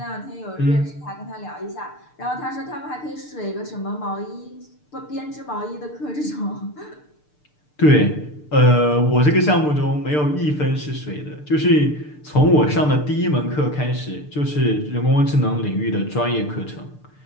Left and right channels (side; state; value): right; late; 6.7 ms